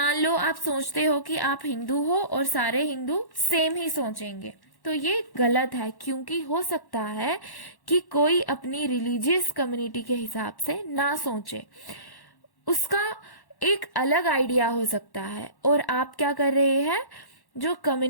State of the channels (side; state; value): right; late; 1.1 ms